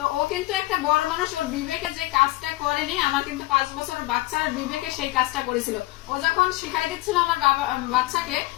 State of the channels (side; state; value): right; quieter; 19.4 dB